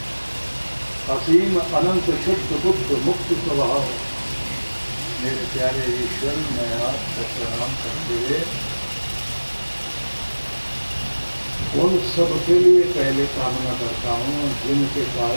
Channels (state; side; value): inverted; both; correlation -1.00